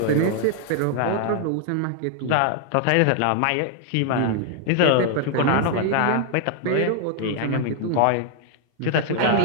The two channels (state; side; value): different; both; correlation 0.00